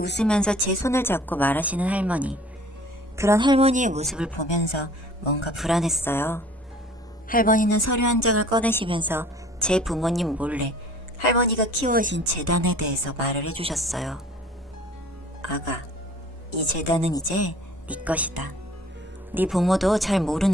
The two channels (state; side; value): normal; both; correlation 0.50